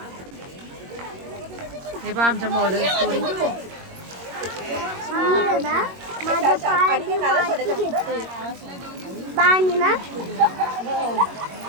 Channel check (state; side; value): late; left; 21 ms